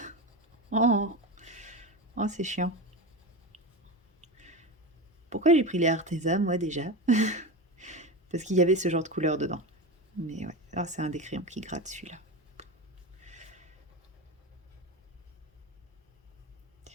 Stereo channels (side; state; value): both; normal; correlation 0.22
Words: Oh, oh c'est chiant. Pourquoi j'ai pris les Arteza, moi, déjà? Parce qu'il y avait ce genre de couleur dedans. Mais ouais, ah, c'est un des crayons qui gratte, celui-là.